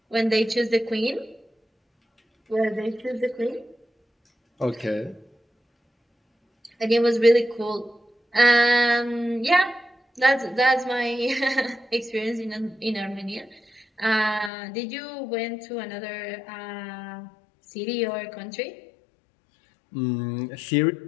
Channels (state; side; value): drops out; right; at 14.5 s